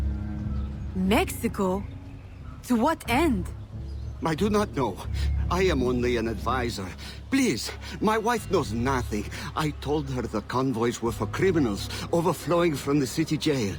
Mexico? To what end? I do not know. I am only an advisor. Please, my wife knows nothing. I told her the convoys were for criminals overflowing from the city jail.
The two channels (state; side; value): identical; both; correlation 1.00